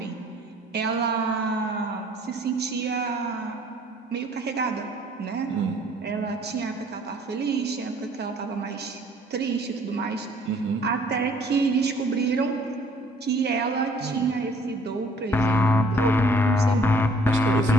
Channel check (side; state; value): both; normal; correlation 0.57